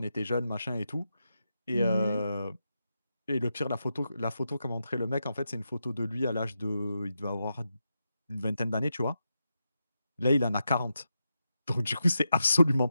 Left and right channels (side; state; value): both; inverted; correlation -0.87